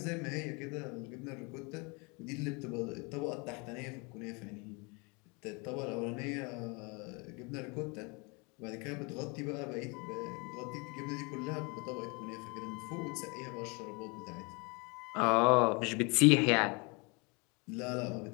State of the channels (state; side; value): quieter; right; 30.0 dB